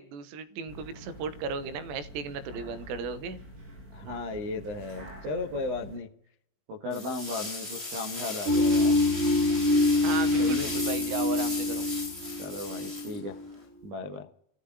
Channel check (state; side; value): late; left; 20 ms